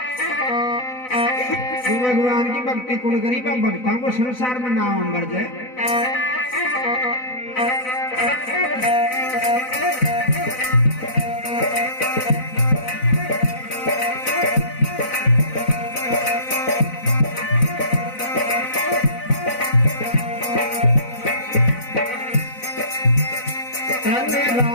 तो भगवान की भक्ति कौन करी, भक्तों को संसार में नाम मर जाए।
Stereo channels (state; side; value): late; right; 4.0 ms